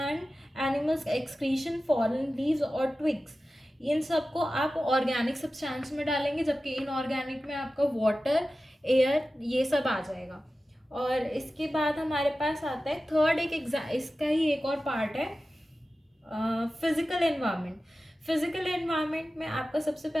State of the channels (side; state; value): both; normal; correlation 0.94